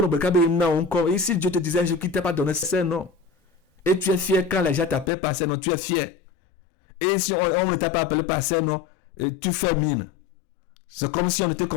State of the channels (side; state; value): right; drops out; at 5.1 s